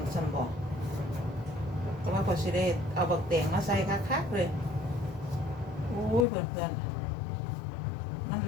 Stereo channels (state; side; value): drops out; right; at 6.2 s